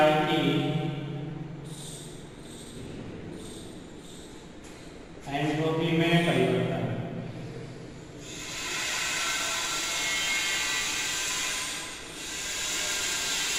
की एंट्रोपी में परिवर्तन।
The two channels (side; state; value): both; identical; correlation 1.00